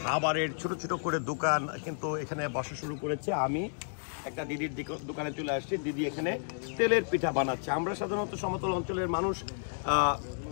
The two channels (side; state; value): right; silent; digital silence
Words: খাবারের ছোট ছোট করে দোকান কিন্তু এখানে বসা শুরু করেছে। আমি একটা দিদির দোকানে চলে আসছি। দিদি এখানে তেলের পিঠা বানাচ্ছে। আমরা সাধারণত সমতল অঞ্চলের মানুষ